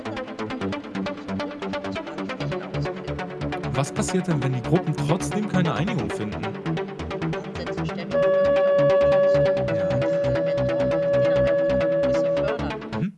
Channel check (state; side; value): identical; both; correlation 1.00